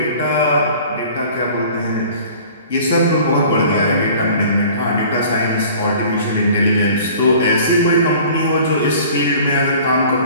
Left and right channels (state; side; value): inverted; both; correlation -0.47